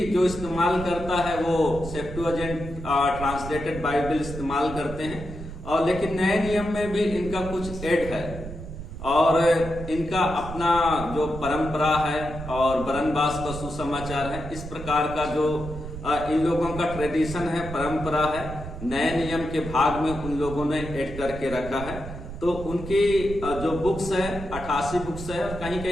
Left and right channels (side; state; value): right; noise; rumble, 10 dB below the sound